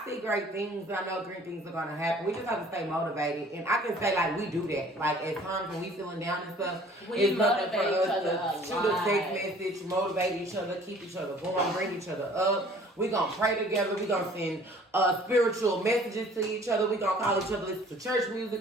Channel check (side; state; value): both; normal; correlation 0.53